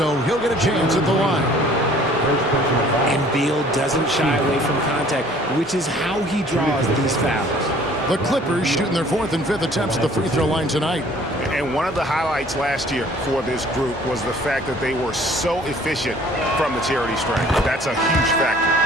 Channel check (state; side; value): normal; both; correlation 0.54